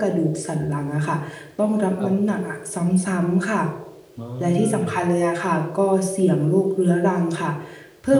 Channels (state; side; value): identical; both; correlation 1.00